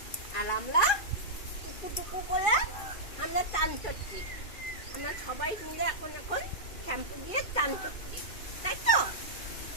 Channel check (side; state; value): right; late; 2.5 ms